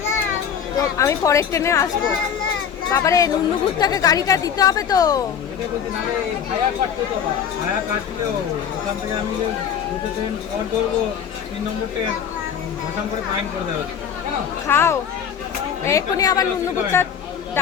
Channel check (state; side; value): quieter; right; 7.9 dB